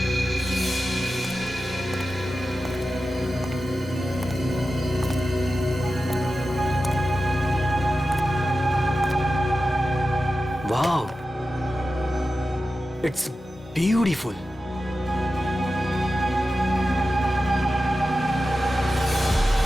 Wow, it's beautiful.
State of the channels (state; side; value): normal; both; correlation 0.93